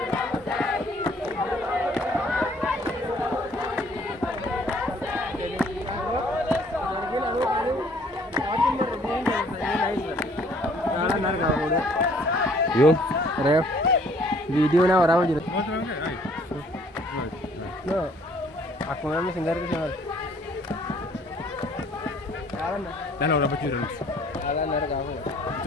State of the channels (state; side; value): normal; both; correlation 0.59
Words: Yo, ref. Video na orang jadi. No, aku memang singgah ke sana. Dah lah orang bujur. Alah nara kamu.